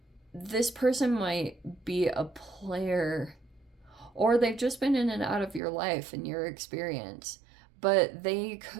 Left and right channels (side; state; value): left; drops out; at 5.6 s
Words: this person might be a player, or they've just been in and out of your life and your experience, but they